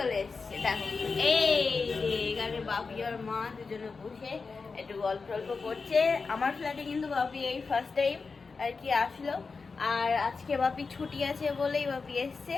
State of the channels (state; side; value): quieter; right; 4.6 dB